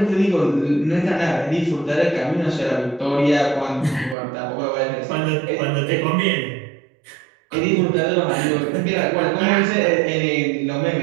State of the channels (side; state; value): left; drops out; at 4.2 s